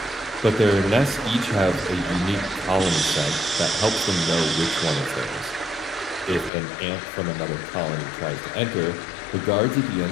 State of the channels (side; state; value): right; drops out; at 6.5 s